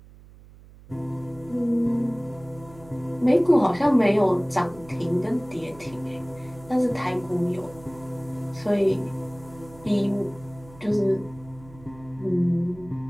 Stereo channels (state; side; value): noise; right; hum, 21 dB below the sound